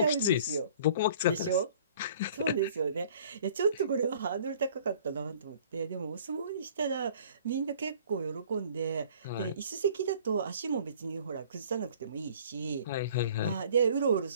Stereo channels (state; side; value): inverted; both; correlation -0.53